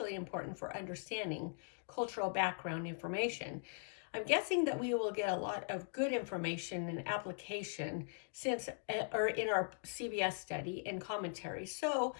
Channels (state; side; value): silent; right; digital silence